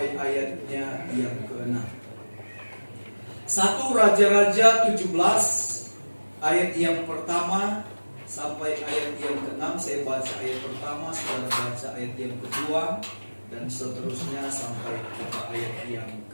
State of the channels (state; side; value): inverted; both; correlation -1.00